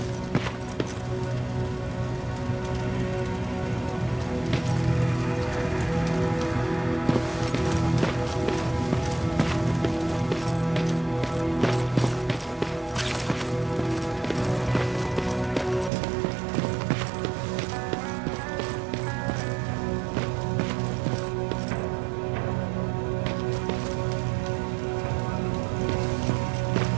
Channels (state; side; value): drops out; left; at 15.9 s